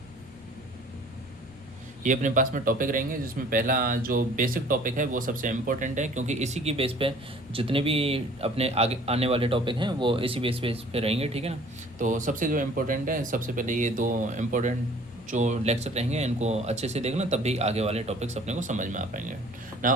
ये अपने पास में टॉपिक रहेंगे, जिसमें पहला जो बेसिक टॉपिक है वो सबसे इम्पोर्टेंट है, क्योंकि इसी की बेस पे जितने भी अपने आगे आने वाले टॉपिक हैं वो इसी बेस पे रहेंगे। ठीक है ना, तो सबसे जो इम्पोर्टेंट है, सबसे पहले ये 2 इम्पोर्टेंट जो लेक्चर रहेंगे इनको अच्छे से देखना, तब भी आगे वाले टॉपिक्स अपने को समझ में आ पाएंगे ना।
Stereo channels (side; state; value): both; normal; correlation 0.52